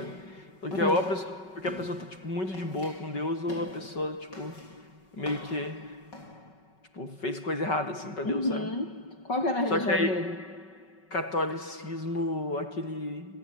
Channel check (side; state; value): right; late; 5.3 ms